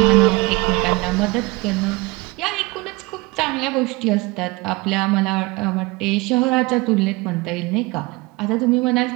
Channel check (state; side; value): quieter; left; 24.1 dB